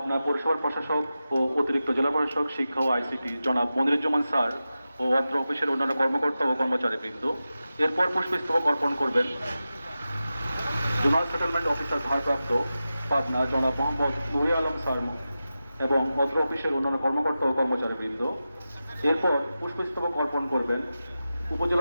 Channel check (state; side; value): inverted; both; correlation -0.93